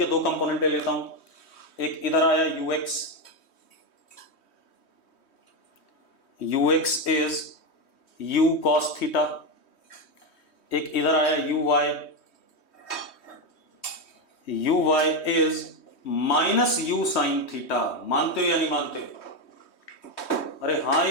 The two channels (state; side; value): late; right; 3.1 ms